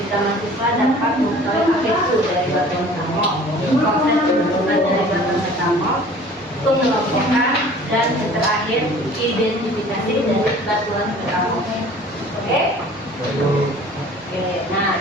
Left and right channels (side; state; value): both; normal; correlation 0.48